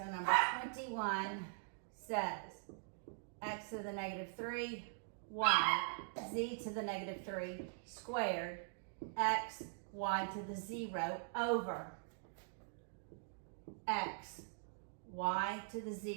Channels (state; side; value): silent; left; digital silence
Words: number 21 says x to the negative 3, y, z to the negative 3 squared, x, y to the 0 over x, y to the